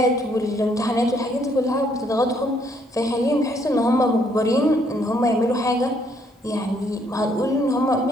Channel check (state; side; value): normal; both; correlation 0.69